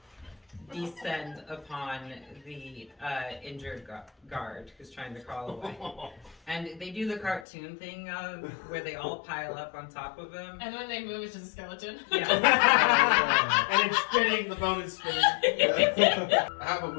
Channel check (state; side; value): drops out; right; at 7.5 s